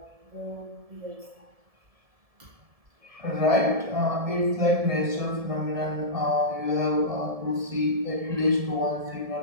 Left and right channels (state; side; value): late; left; 1.7 ms